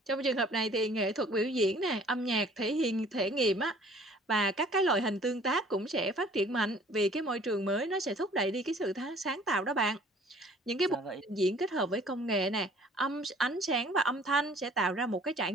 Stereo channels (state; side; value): normal; both; correlation 0.54